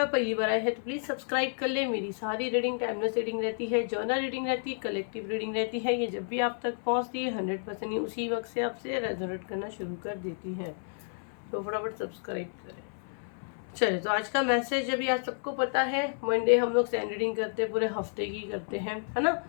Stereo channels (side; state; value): right; silent; 57 dB below the other